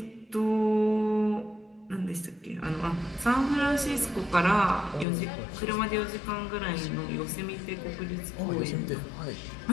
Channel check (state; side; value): drops out; right; at 5.1 s